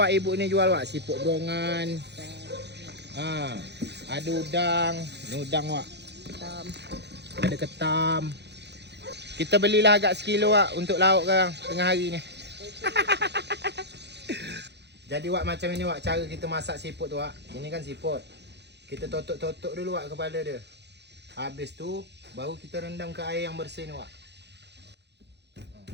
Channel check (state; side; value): late; left; 0.50 ms